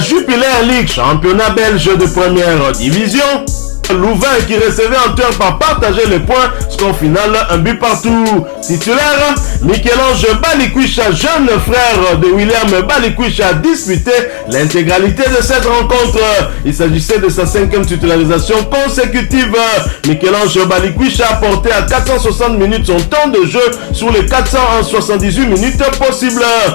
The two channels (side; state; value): right; silent; digital silence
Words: League, championnat belge de première division. Louvain qui recevait en turn par partager les points, score final un but partout. Titulaire, Michel-Ange Balikwisha, jeune frère de William Balikwisha, a disputé l'intégralité de cette rencontre. Il s'agissait de sa 5e titularisation consécutive. Michel-Ange Balikwisha a porté à 460 minutes son temps de jeu sur les 478 minutes possibles,